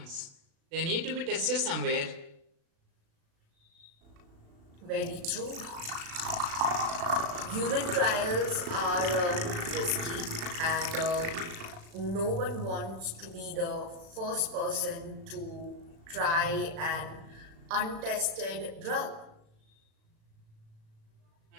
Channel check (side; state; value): left; late; 36 ms